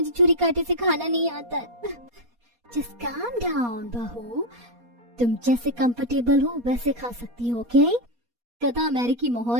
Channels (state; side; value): late; left; 4.2 ms